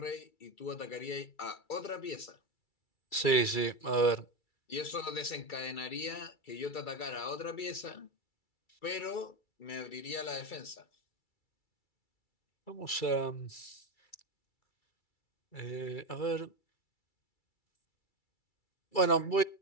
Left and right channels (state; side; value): late; right; 2.3 ms